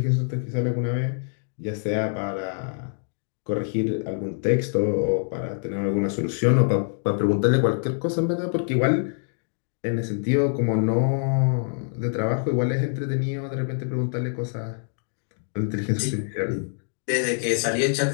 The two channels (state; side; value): silent; right; digital silence